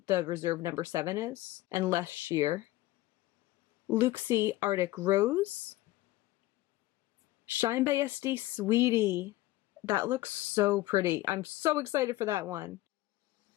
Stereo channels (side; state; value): right; quieter; 17.4 dB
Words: the Reserve number 7 is, and less sheer. Looxi Arctic Rose, Shine by SD Sweetie. That looks so pretty. I'm so excited for that one.